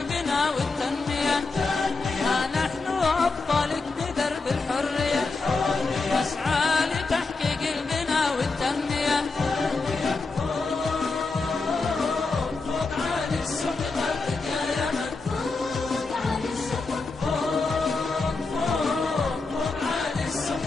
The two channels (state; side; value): quieter; right; 3.9 dB